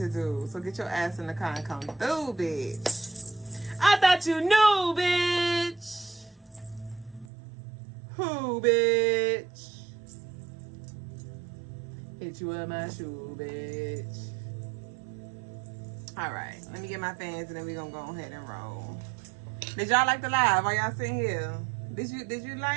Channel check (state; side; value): drops out; left; at 7.2 s